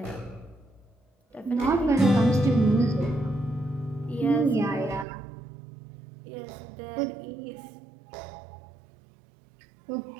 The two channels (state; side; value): drops out; left; at 5.1 s